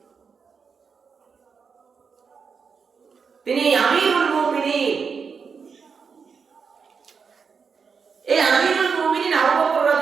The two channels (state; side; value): quieter; left; 5.7 dB